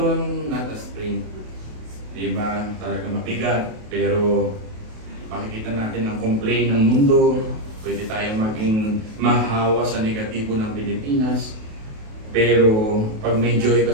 not a sprint. Diba? Talaga mabigat, pero makikita natin ang complaint ng mundo. Pwede tayong maging mahawa sa negatibo ng Pilipinas. Pero pag may joy ka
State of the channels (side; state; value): left; late; 28 ms